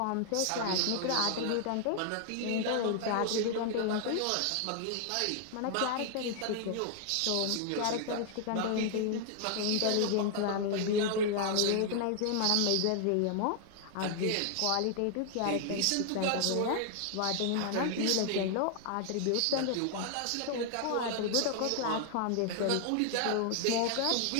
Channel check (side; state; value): both; different; correlation 0.00